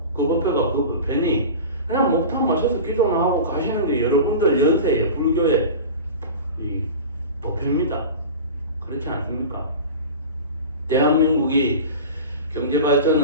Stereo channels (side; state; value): both; inverted; correlation -0.32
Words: 그 법회가 그 법회니 그냥 목탁 맞춰서 기도나 하고 가시는 게 여러분들 연세의 불교의 이 법회입니다. 그렇지 않습니까? 대한민국이